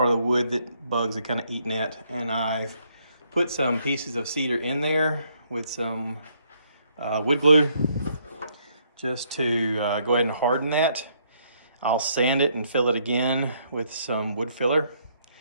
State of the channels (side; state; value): both; inverted; correlation -0.70